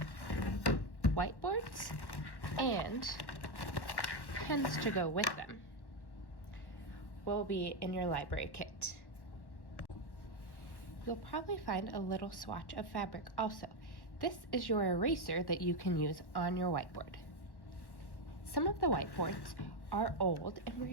Whiteboards and pens to go with them will be in your library kit. You'll probably find a little swatch of fabric also. This is your eraser that you can use on your whiteboard. Some of the whiteboards are old and we're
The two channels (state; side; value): late; right; 1.1 ms